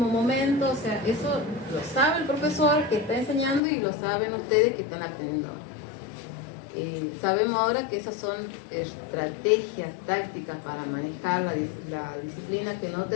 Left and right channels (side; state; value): right; drops out; at 3.6 s